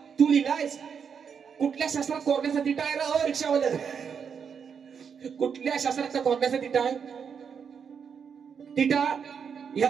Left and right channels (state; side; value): quieter; left; 6.8 dB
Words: कुठल्या शास्त्रात कोरण्याचा तिटा आहे रा रिक्षावाला कुठल्या शास्त्राचा कोरण्याचा तिटा आहे तिटा